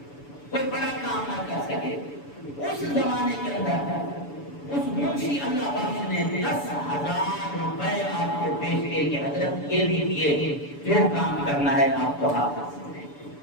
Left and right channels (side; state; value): right; late; 7.0 ms